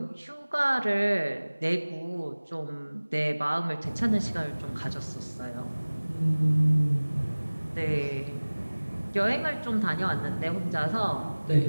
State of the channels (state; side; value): inverted; both; correlation -1.00